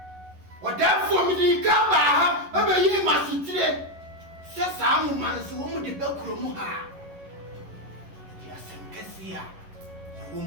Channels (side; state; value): left; late; 11 ms